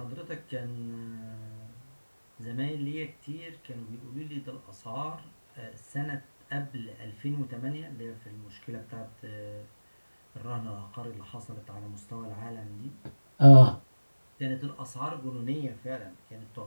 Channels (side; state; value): both; inverted; correlation -1.00